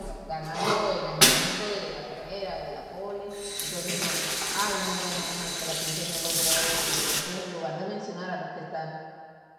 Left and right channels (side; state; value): both; identical; correlation 1.00